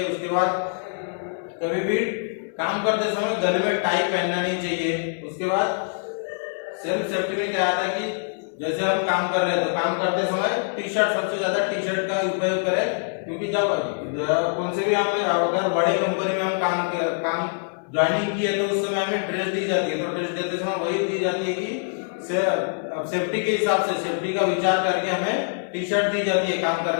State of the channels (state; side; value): silent; right; 62 dB below the other